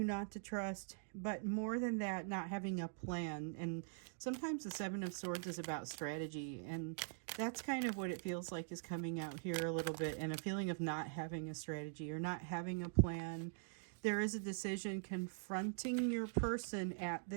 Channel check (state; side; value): silent; left; digital silence